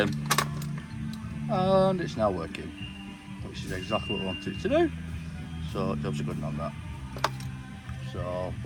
and it's now working, which is exactly what I wanted it to do. So jobs are good on that. So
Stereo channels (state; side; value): identical; both; correlation 1.00